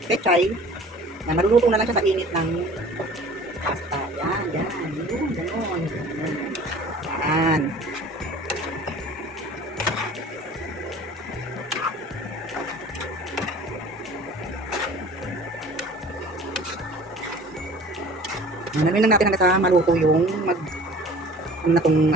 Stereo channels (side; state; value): both; normal; correlation 0.45